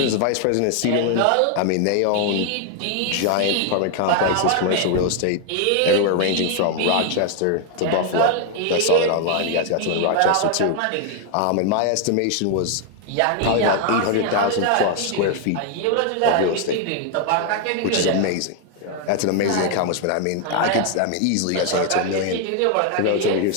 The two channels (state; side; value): different; both; correlation 0.00